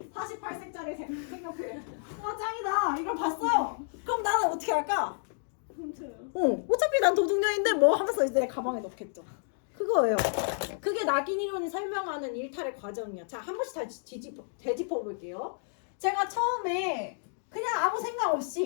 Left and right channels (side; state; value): right; silent; digital silence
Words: 48색짜리 색연필. 와 짱이다. 이걸 봤어요. 그럼 나는 어떻게 할까? 훔쳐요. 어차피 난 도둑년인데 뭐 하면서 이제 내 가방에 넣겠죠. 그거예요. 그게 낙인 이론이 설명하는 일탈의 과정이야. 자, 한 번씩 다시 되짚어 볼게요. 제가 처음에 그냥 아무 생각